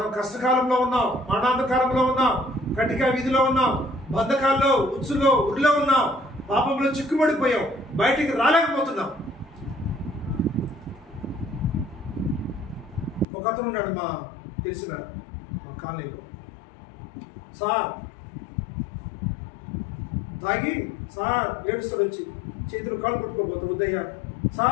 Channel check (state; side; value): drops out; right; at 13.2 s